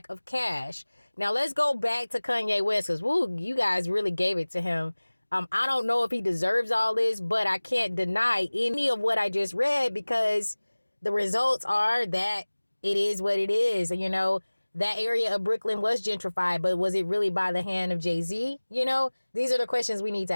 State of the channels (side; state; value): both; inverted; correlation -1.00